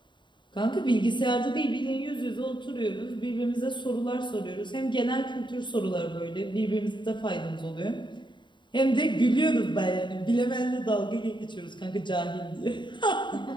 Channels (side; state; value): right; late; 0.23 ms